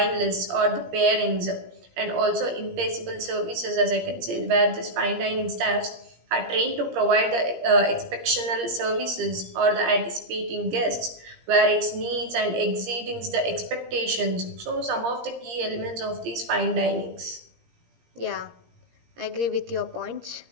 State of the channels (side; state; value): left; late; 17 ms